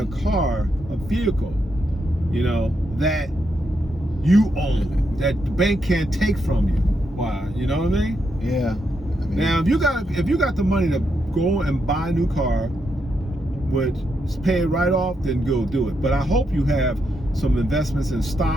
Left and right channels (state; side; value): normal; both; correlation 0.81